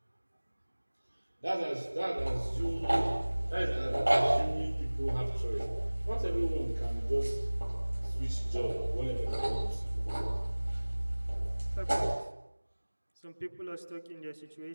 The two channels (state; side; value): inverted; both; correlation -1.00